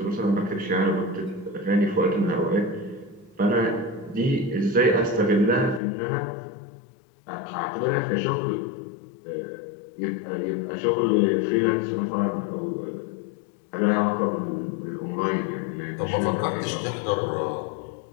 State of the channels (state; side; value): drops out; right; at 5.8 s